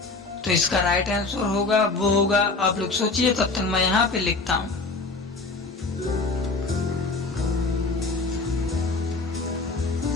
तो इसका राइट आंसर होगा वो होगा, आप लोग सोचिए तब तक मैं यहाँ पे लिखता हूँ।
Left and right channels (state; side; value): quieter; right; 3.7 dB